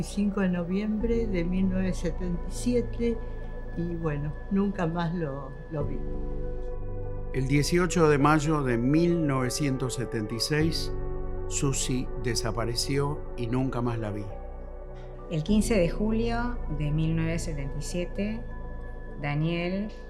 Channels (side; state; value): both; identical; correlation 1.00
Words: de noviembre de 1977 y bueno, nunca más lo vi. El 18 de mayo de 1976, Susi desapareció y nunca más la vi. El 15 de julio de 1977, Daniel